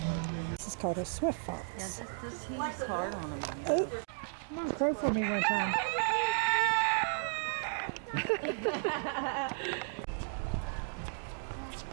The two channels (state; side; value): silent; left; digital silence